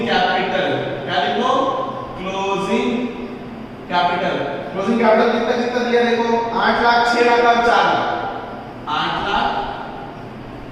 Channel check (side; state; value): both; identical; correlation 1.00